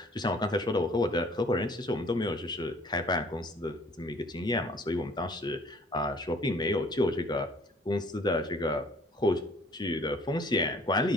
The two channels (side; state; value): both; normal; correlation 0.55